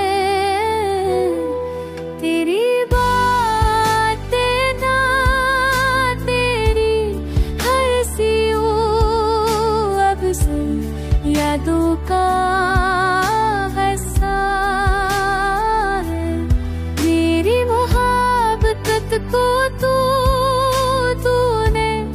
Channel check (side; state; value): both; identical; correlation 1.00